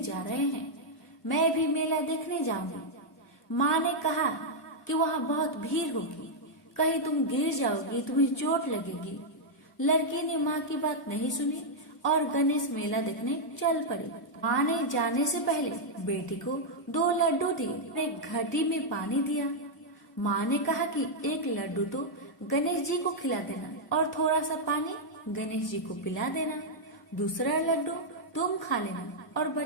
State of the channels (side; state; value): both; normal; correlation -0.04